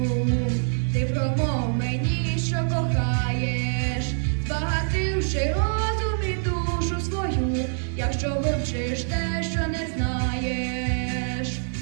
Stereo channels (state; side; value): silent; left; 62 dB below the other